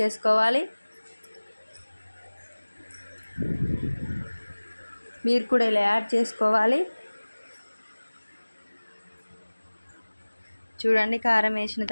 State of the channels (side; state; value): both; inverted; correlation -1.00